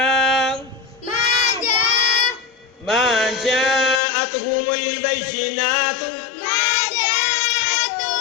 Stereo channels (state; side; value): drops out; right; at 4.0 s